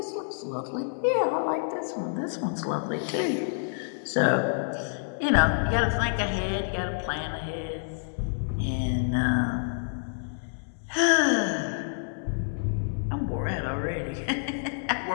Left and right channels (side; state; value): right; silent; digital silence